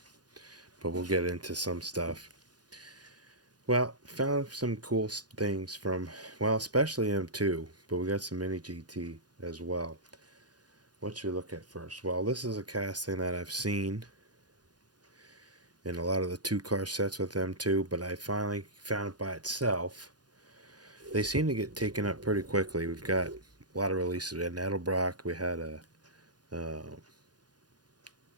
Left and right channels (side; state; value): left; late; 0.69 ms